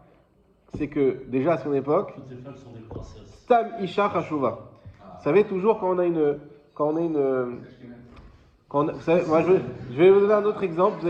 c'est que déjà à son époque, Toutes les femmes sont des princesses. Stam Isha Chashuva. Vous savez toujours quand on a une. Vous savez, moi je vais vous donner un autre exemple, vous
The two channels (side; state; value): both; identical; correlation 1.00